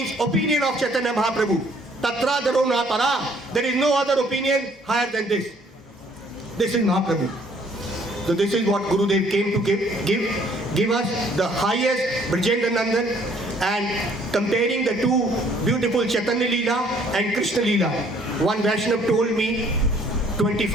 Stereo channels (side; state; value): both; normal; correlation 0.61